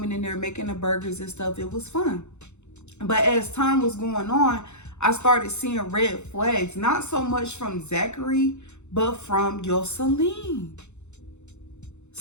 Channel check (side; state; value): right; late; 0.82 ms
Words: in there, making the burgers and stuff. It was fun. But as time was going on, I started seeing red flags. Not so much from Zachary, but from Yoselin.